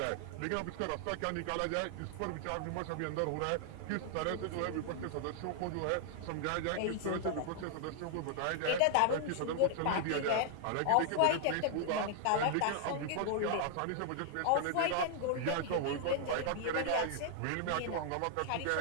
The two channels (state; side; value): different; both; correlation 0.00